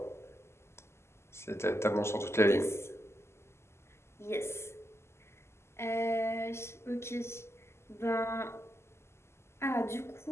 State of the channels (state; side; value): late; right; 0.13 ms